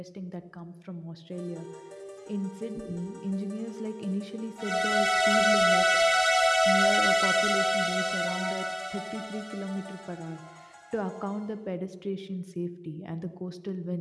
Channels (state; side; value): identical; both; correlation 1.00